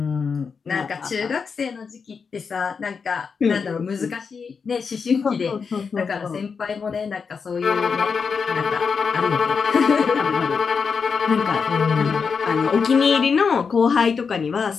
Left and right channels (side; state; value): right; quieter; 5.6 dB